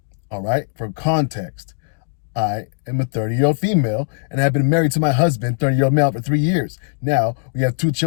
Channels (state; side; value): silent; right; digital silence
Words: All right, for context, I am a 30-year-old female and have been married to my husband, 30-year-old male, for 3 years. Now we have 2